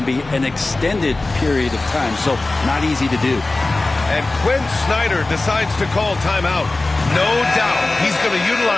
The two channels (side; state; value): right; quieter; 3.1 dB